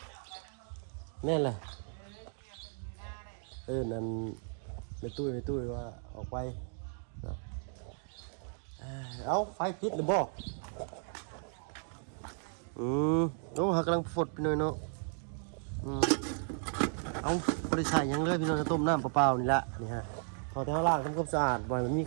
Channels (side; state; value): left; silent; 55 dB below the other